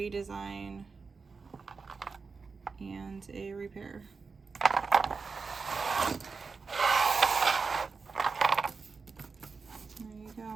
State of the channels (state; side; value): quieter; left; 4.7 dB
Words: and a repair.